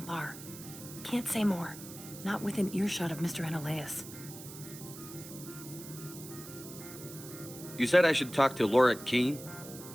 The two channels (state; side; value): noise; right; hiss, 14 dB below the sound